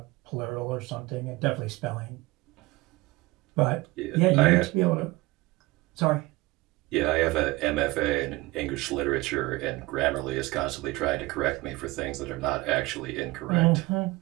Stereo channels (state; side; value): quieter; left; 21.0 dB